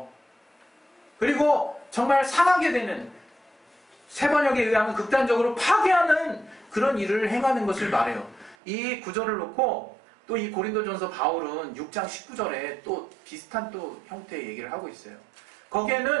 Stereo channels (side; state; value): left; drops out; at 8.6 s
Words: 그리고 정말 상하게 되는, 세 번역에 의하면 극단적으로 파괴하는 그런 일을 행하는 것을 말해요. 이 구절을 놓고 또 이 고린도전서 바울은 6장 19절에 또 비슷한 또 형태의 얘기를 하고 있어요.